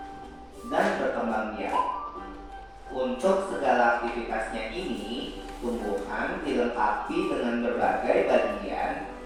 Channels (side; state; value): both; identical; correlation 1.00